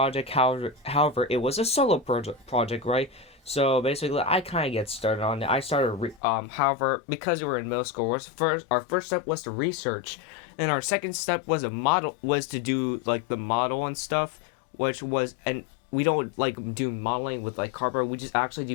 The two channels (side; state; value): right; drops out; at 6.2 s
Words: However, it was a solo project, right? So basically, I kind of get started on it. I started, however, because we were in middle school, our first step was to research, and our second step was to do like the model and stuff, and we don't like do modeling with like cardboard. We just actually